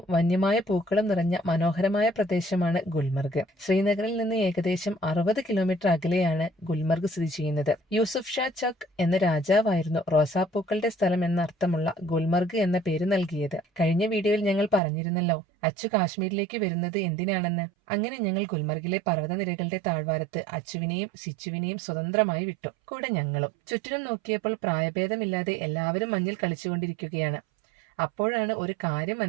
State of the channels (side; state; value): left; drops out; at 14.8 s